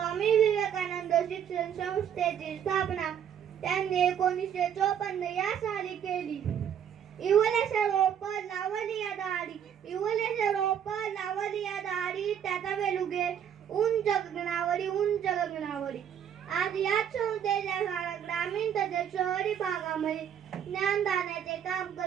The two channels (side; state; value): left; quieter; 8.9 dB